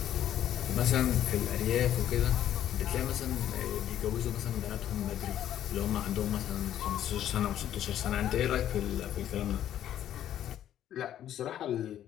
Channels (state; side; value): quieter; right; 11.3 dB